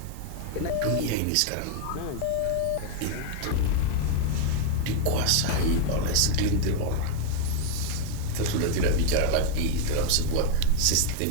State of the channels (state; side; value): different; both; correlation 0.00